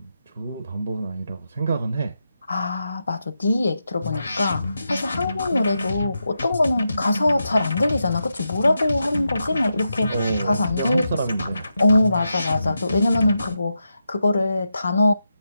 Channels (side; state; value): both; inverted; correlation -0.87